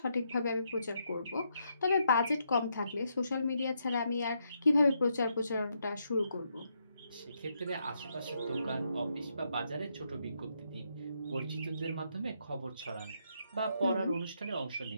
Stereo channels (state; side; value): inverted; both; correlation -0.78